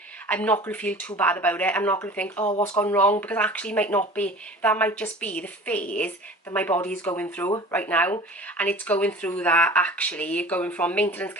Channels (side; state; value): both; normal; correlation 0.41